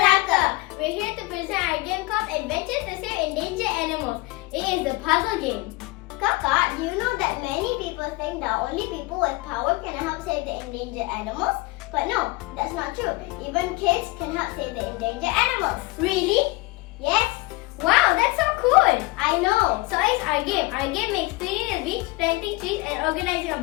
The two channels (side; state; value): right; quieter; 22.9 dB